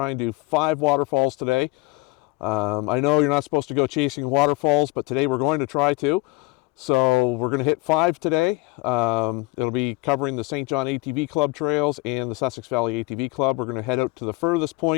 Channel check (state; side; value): quieter; right; 21.6 dB